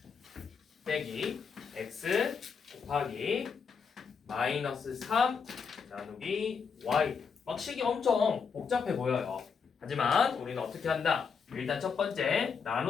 빼기 x 곱하기 마이너스 3 나누기 y. 막 식이 엄청 복잡해 보여요. 하지만 우리는 어떻게 한다? 일단 첫 번째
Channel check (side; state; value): right; quieter; 5.9 dB